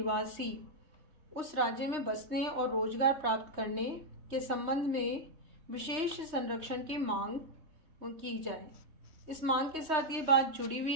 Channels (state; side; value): late; left; 3.2 ms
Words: उस राज्य में बसने और रोजगार प्राप्त करने के संबंध में विशेष संरक्षण की मांग की जाए। इस मांग के साथ ये बात जुड़ी हुई